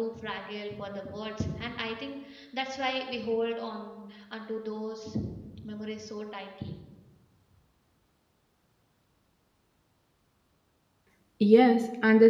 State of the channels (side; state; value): both; identical; correlation 1.00